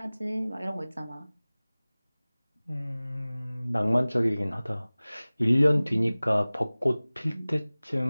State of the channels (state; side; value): inverted; both; correlation -0.99